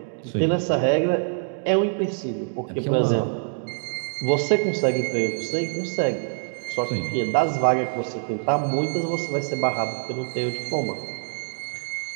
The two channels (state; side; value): silent; left; digital silence